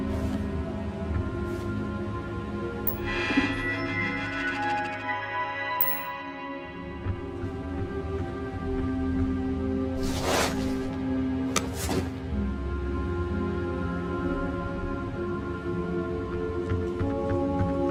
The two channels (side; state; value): both; identical; correlation 1.00